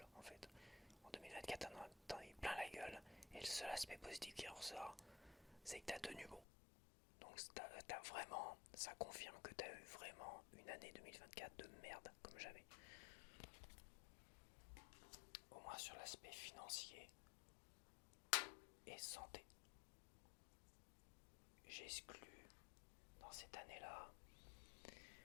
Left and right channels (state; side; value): drops out; right; at 6.5 s